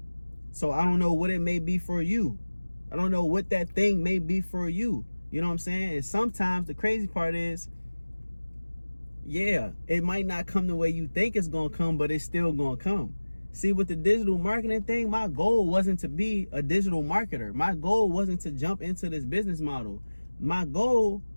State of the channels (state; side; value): inverted; both; correlation -1.00